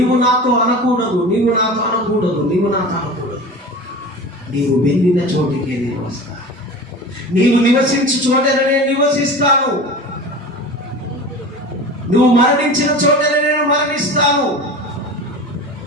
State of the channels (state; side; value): normal; both; correlation 0.34